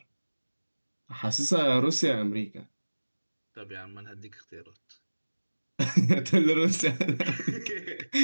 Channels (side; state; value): both; inverted; correlation -1.00